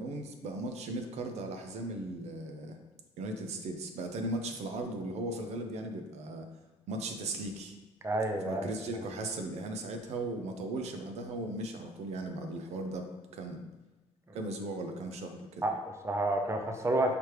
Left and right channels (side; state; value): both; normal; correlation 0.51